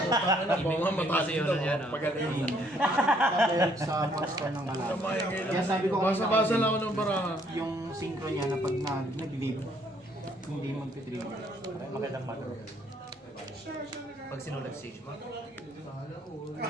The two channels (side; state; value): both; normal; correlation 0.66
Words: Ibig kasi yun yan. Pagaling. Dahil sa monster ng alam. Kaya sabi ko Basa-basa lang ako ng baraha. yung synchro niya na pag nag-leave, hindi mag-trigger. Magandang mother. Pag sinulag stage mo.